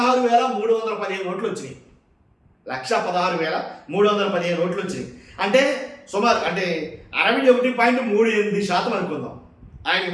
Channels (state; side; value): identical; both; correlation 1.00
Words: ఓట్లు వచ్చినాయి. 116,315 ఓట్లు వచ్చినాయి. అంటే సుమారు అంటే 61.38% అనుకుందాం ఆయనకి